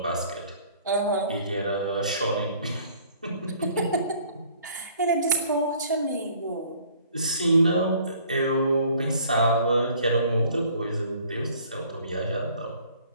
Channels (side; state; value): both; inverted; correlation -0.56